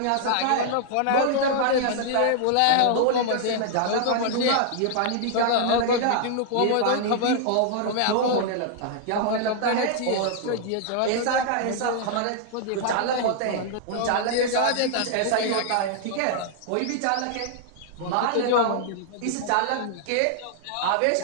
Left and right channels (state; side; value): different; both; correlation -0.01